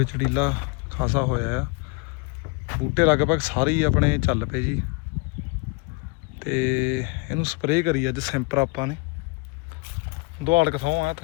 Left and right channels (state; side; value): quieter; right; 30.4 dB